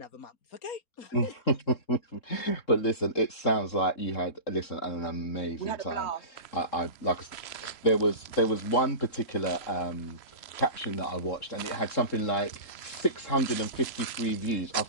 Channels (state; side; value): late; right; 3.7 ms